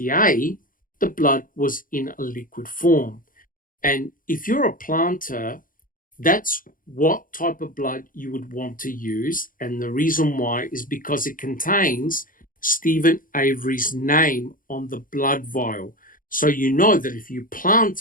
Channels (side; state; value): right; late; 0.40 ms